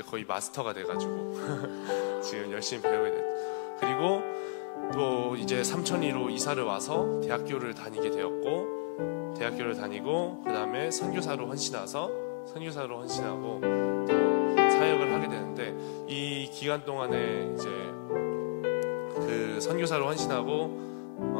거의 마스터가 돼가지고 지금 열심히 배우게 됐죠. 그리고 또 이제 삼천리로 이사를 와서 대학교를 다니게 되었고 대학교를 다니고 그 다음에 선교사로 헌신하고 또 사역을 하게 되는데 이 기간 동안에 이제 그 선교사로 헌신하고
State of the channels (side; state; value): right; silent; 56 dB below the other